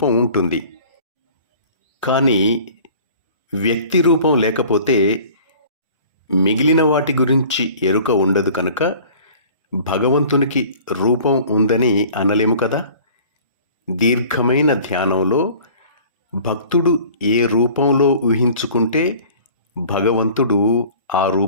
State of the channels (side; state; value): both; inverted; correlation -0.47